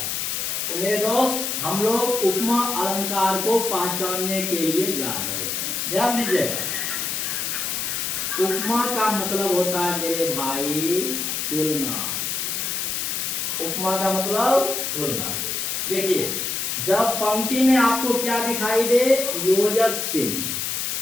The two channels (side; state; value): left; noise; hiss, 1 dB below the sound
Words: तो मेरे दोस्त हम लोग उपमा अलंकार को पहचानने के लिए जा रहे हैं। ध्यान दीजिएगा, उपमा का मतलब होता है मेरे भाई तुलना। उपमा का मतलब तुलना। देखिए, जब पंक्ति में आपको क्या दिखाई दे? योजक चिन्ह।